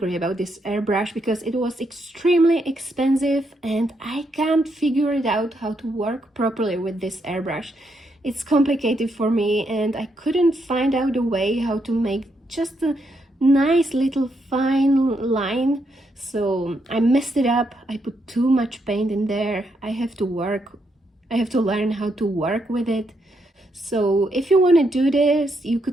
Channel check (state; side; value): normal; both; correlation 0.78